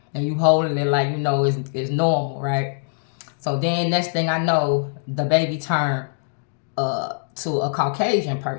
and you holding it like, you know, it's normal, right? So then next thing I know, the baby turned to a Caucasian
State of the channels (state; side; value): silent; right; digital silence